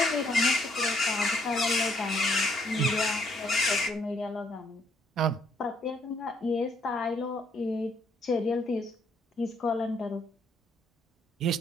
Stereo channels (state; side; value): normal; both; correlation 0.69